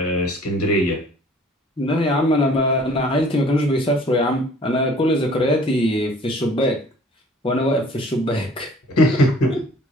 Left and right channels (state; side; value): normal; both; correlation 0.52